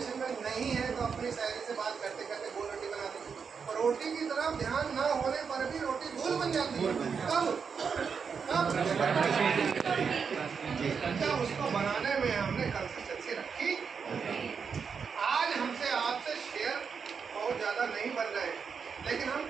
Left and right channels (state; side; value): quieter; left; 6.1 dB